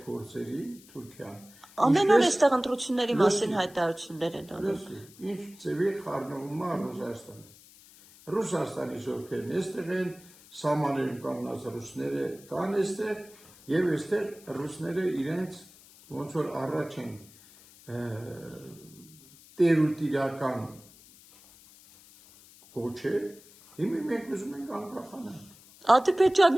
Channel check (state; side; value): noise; left; hiss, 23 dB below the sound